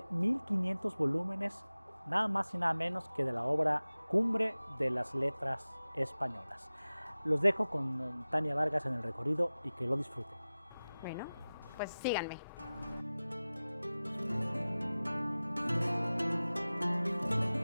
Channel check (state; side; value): inverted; both; correlation -0.97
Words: 1500 volúmenes, nada más y nada menos que de la obra cumbre de las letras españolas. Los dejo con Tania Vargas en el recorrido y que lo disfruten. Bueno, pues síganme.